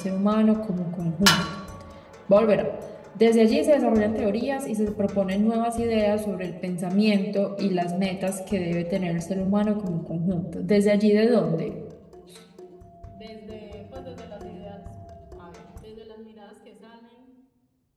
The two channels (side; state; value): both; identical; correlation 1.00